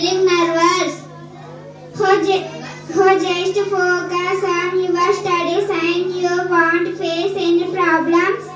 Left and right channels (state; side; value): identical; both; correlation 1.00